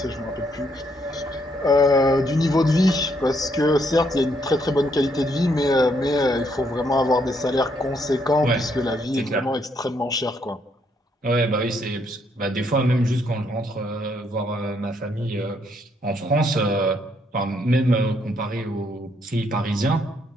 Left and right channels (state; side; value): normal; both; correlation 0.72